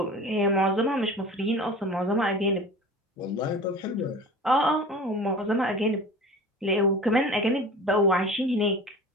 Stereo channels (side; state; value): both; normal; correlation 0.38